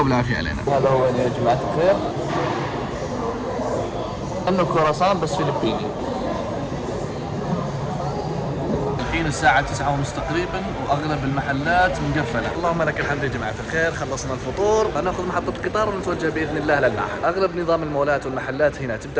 وبالعافية علينا. هذا هو يا جماعة الخير، إنه كرواسون بس فلبيني. الحين الساعة 9:30 تقريبا وأغلب المحلات مقفلة. اللهم لك الحمد يا جماعة الخير، خلصنا الفطور، ناخذ محطة قطار ونتوجه بإذن الله للمعهد. أغلب نظام المولات والمحلات هنا تبدأ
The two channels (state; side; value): identical; both; correlation 1.00